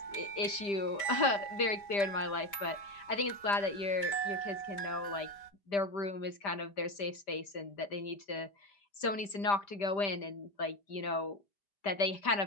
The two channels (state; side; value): late; right; 5.0 ms